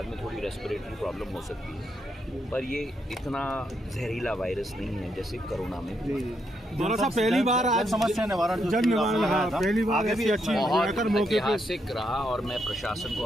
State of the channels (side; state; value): both; normal; correlation 0.79